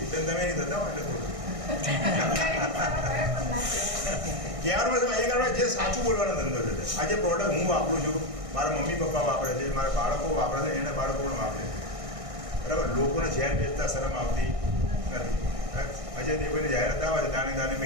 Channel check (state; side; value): late; left; 1.6 ms